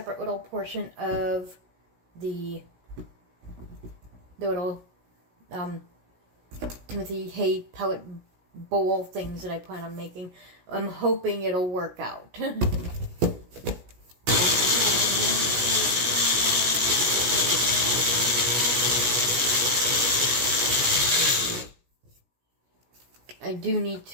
little portion of the little Timothy hay pellet bowl things that I plan on making. I'm hoping it'll work out. I do need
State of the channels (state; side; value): late; left; 17 ms